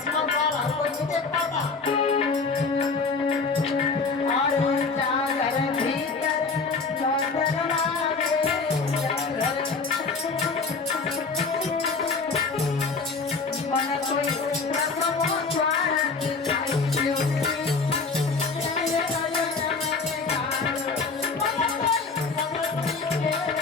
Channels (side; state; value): right; quieter; 4.4 dB